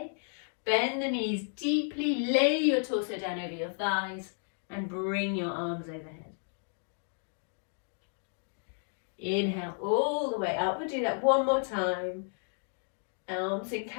Bend the knees deeply, lay your torso down over your thighs and bring your arms overhead. Inhale all the way up. We'll do that one more time. Arms in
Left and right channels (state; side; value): silent; right; 56 dB below the other